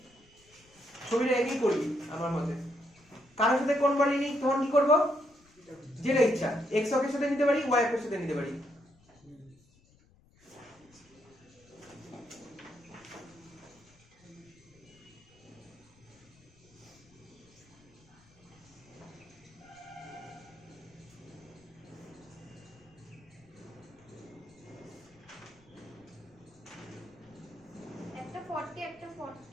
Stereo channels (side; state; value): left; noise; rumble, 29 dB below the sound